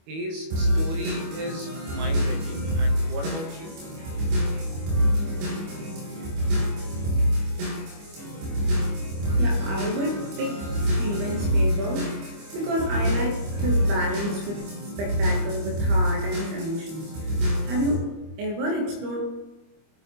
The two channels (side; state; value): left; late; 25 ms